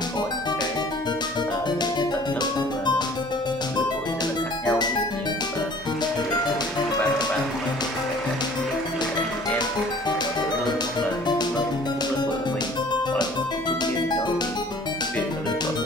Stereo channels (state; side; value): noise; right; hum, 29 dB below the sound